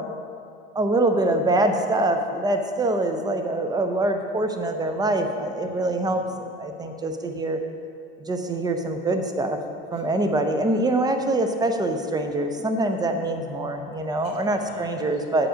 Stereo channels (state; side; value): normal; both; correlation 0.45